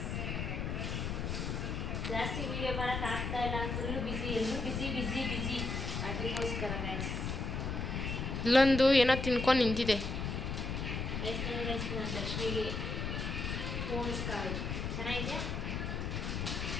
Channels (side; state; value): left; noise; rumble, 2 dB below the sound